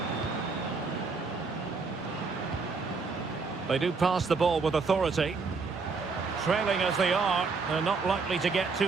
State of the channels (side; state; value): left; quieter; 4.5 dB